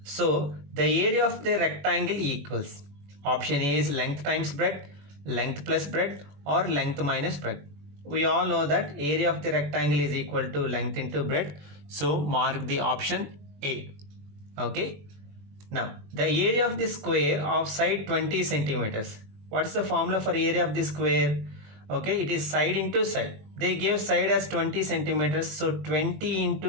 So the area of the rectangle equals, option A is length times breadth, length plus breadth, or length minus breadth. We all know that area of the rectangle is equal to length into breadth. So mark the option A. Okay. Now the area of the square of side 20 centimeters. What is the formula for area of the square? Okay, it is side into side. They gave side as 20 centimeters. So 20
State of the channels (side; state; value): left; late; 21 ms